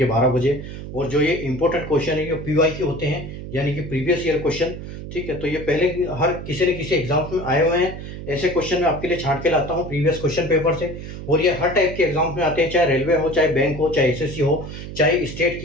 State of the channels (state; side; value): noise; right; hum, 10 dB below the sound